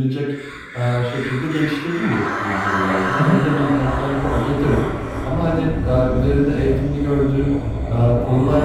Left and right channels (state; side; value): identical; both; correlation 1.00